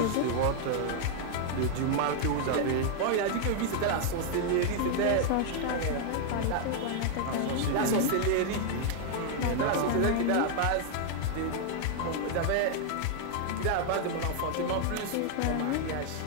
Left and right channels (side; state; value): both; different; correlation 0.00